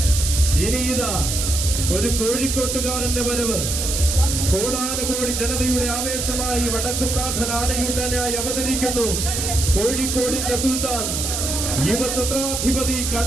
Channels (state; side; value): noise; right; hiss, 2 dB below the sound